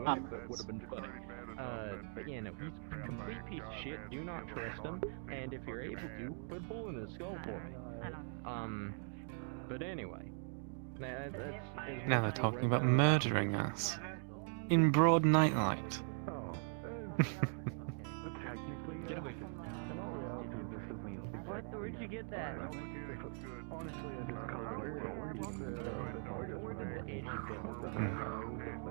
but would have been funny. But yeah, no, he's a complete piece of shit. Do not trust him, and if you're able to, put a bullet in his skull for me. But anyway, Now they're talking about murdering us. In broad nightlight. Where'd you get that? Honestly, I just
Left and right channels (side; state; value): left; silent; 51 dB below the other